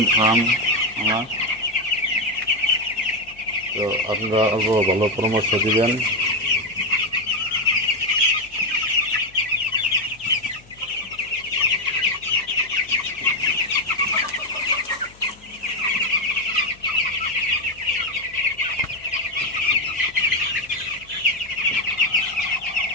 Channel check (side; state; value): left; noise; hum, 26 dB below the sound